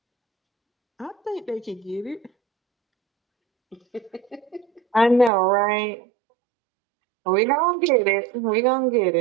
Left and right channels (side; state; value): left; drops out; at 5.3 s